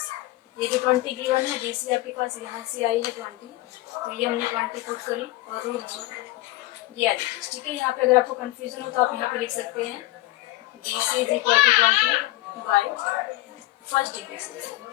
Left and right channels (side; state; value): right; quieter; 17.8 dB